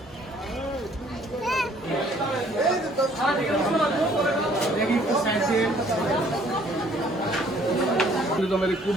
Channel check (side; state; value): both; normal; correlation 0.60